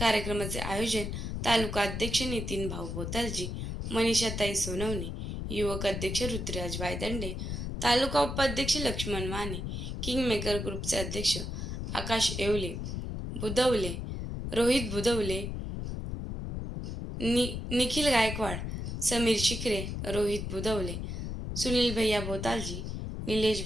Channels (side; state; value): left; noise; rumble, 4 dB below the sound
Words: आयोजन तालुका अध्यक्ष नितीन भाऊ बोतालजी, मनीषाताई सोनवणे, युवक अध्यक्ष रुद्रराज वायदंडे, तालुका उपाध्यक्ष लक्ष्मण माने, किंगमेकर ग्रुपचे अध्यक्ष आकाश येवले, बुधवले, रोहित बुधवले, निखिल गायकवाड, समीर शिकरे, रोहित बुधवले, सुनील भैया बोतालजी, निलेश